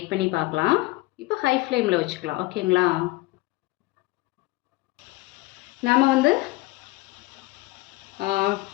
பண்ணி பார்க்கலாம். இப்போ ஹை ஃப்ளேமில் வச்சுக்கலாம். ஓகேங்களா, நாம் வந்து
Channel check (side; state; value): right; quieter; 21.1 dB